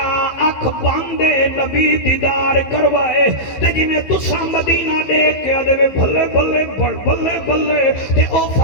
اکھ باندے نبی دیدار کروائے تے جی میں تسا مدینہ دیکھ کے آدھے بھلے بھلے بھلے بھلے تے او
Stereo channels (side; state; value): right; late; 15 ms